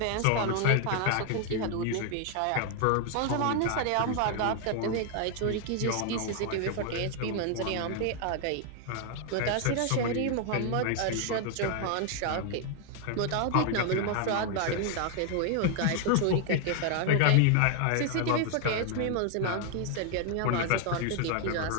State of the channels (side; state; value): both; different; correlation 0.00